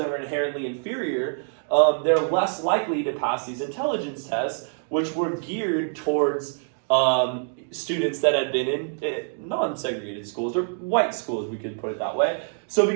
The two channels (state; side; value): silent; left; 59 dB below the other